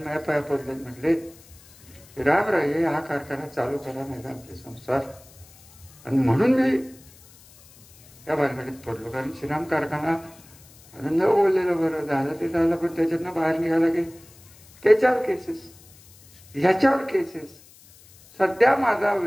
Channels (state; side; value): noise; left; hiss, 24 dB below the sound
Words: पाया पडले, म्हटले रामराये हा कारखाना चालू करा नाही आमचे संसार. आणि म्हणून मी त्या भानगडीत पडलो, कारण श्रीराम कारखाना न बोललेलं बरं झालं ते झालं, पण त्याच्यातनं बाहेर निघाला की त्याच्यावर केसेस, ह्याच्यावर केसेस. सध्या माझा